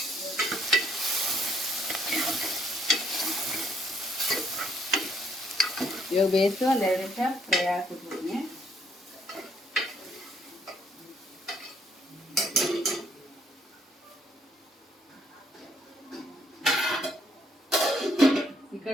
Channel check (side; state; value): both; normal; correlation 0.68